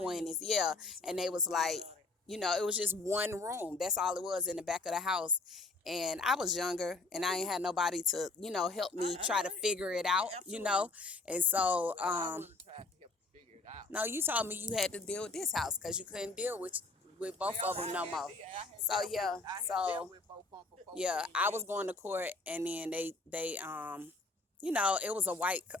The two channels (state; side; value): quieter; right; 3.3 dB